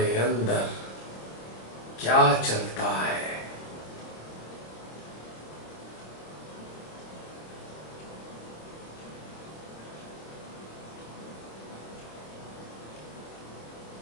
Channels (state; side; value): late; right; 26 ms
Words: अंदर क्या चलता है।